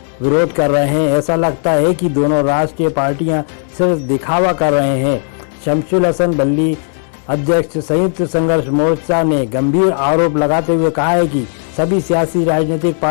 विरोध कर रहे हैं। ऐसा लगता है कि दोनों राष्ट्रीय पार्टियां सिर्फ दिखावा कर रहे हैं। शमशुल हसन बल्ली अध्यक्ष संयुक्त संघर्ष मोर्चा ने गंभीर आरोप लगाते हुए कहा है कि सभी सियासी राजनीतिक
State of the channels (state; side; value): silent; right; digital silence